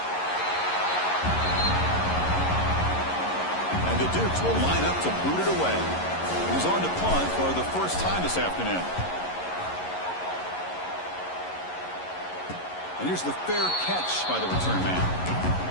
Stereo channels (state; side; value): late; right; 11 ms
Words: And the Dukes will line up to boot it away. He's on to punt for the first time this afternoon. And here's the fair catch by the return man.